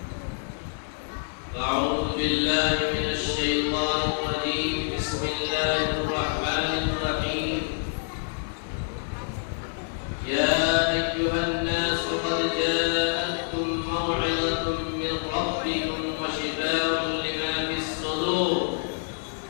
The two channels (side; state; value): right; silent; digital silence